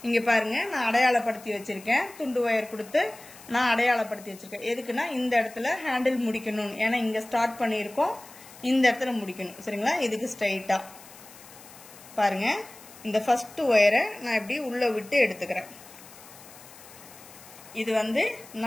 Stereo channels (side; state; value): left; noise; hiss, 20 dB below the sound